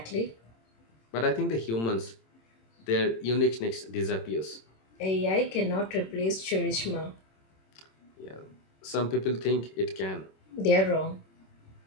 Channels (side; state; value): right; late; 26 ms